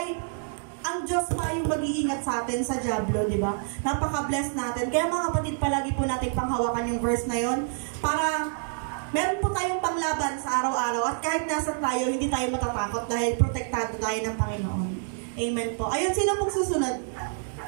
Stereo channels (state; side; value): silent; left; digital silence